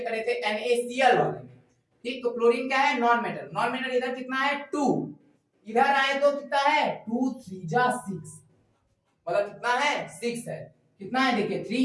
करे थे NaCl वाले में, ठीक। तो क्लोरीन क्या है नॉन मेटल। नॉन मेटल इधर कितना है 2, इधर आए तो कितना है 2 3 जा 6, मतलब कितना है 6 है। कितना है देखिए 3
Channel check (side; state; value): both; identical; correlation 1.00